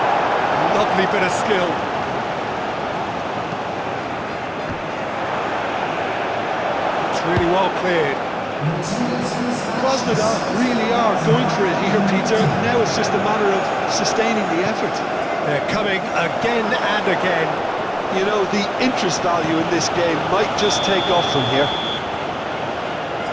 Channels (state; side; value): identical; both; correlation 1.00